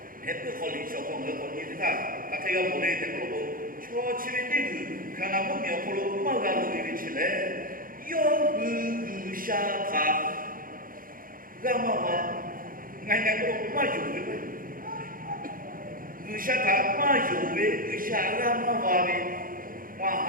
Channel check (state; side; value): late; left; 0.41 ms